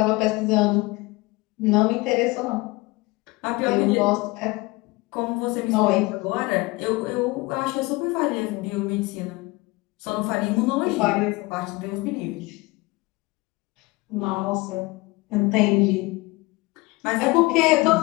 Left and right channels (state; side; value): quieter; right; 22.9 dB